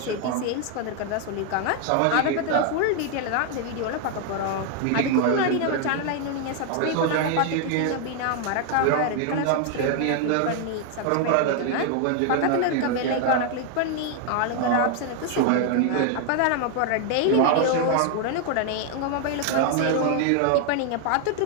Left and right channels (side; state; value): both; different; correlation 0.00